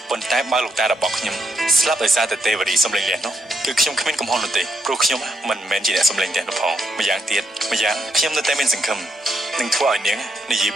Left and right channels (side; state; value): both; normal; correlation 0.79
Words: ប៉ុន្តែបើលោកតារបស់ខ្ញុំស្លាប់ដោយសារតែទេវរីសំលេងលះនោះគឺខ្ញុំគ្មានកំហុសនោះទេព្រោះខ្ញុំមិនមែនជាអ្នកសំលេងលះនោះផងម្យ៉ាងទៀតខ្ញុំនៅតែមានសង្ឃឹមនឹងធ្វើឲ្យនាងនិយាយ